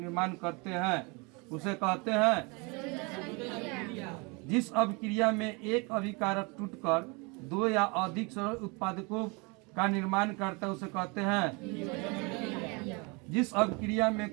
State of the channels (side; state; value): left; quieter; 29.4 dB